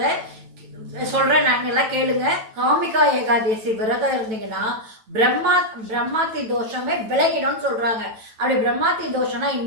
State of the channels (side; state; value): left; late; 9.0 ms